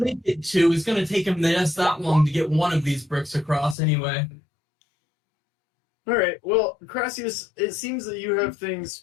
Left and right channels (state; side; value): drops out; right; at 3.8 s